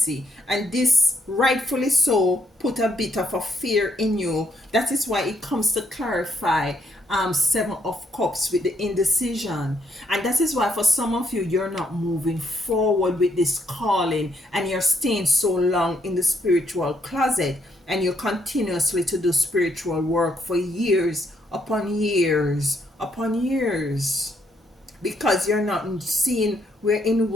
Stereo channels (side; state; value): both; normal; correlation 0.72